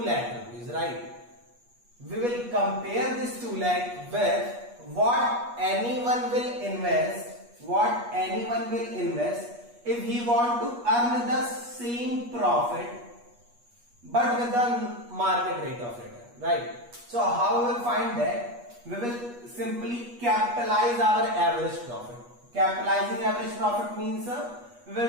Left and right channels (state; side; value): late; left; 8.3 ms